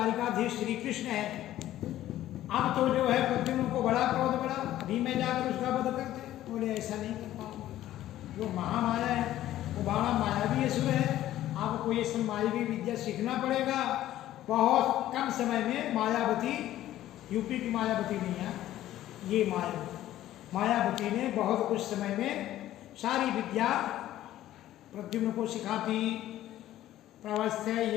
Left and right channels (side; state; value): right; quieter; 13.6 dB